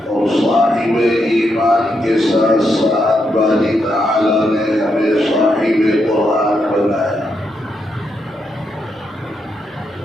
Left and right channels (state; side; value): normal; both; correlation 0.81